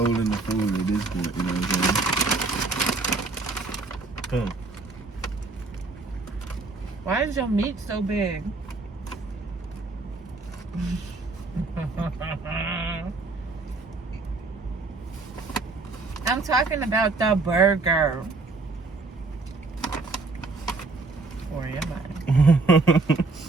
the food at this point. You know what I'm saying? Why is your meat so big? I'm talking about the burger. Or am I?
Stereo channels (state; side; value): quieter; left; 3.7 dB